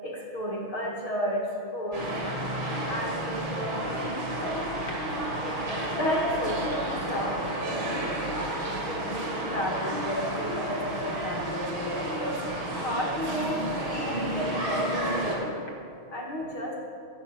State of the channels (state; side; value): late; right; 6.4 ms